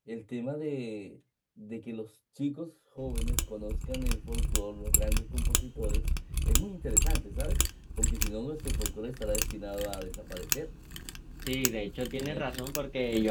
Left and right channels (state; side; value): identical; both; correlation 1.00